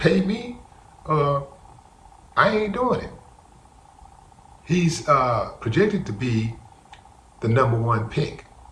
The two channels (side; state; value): both; identical; correlation 1.00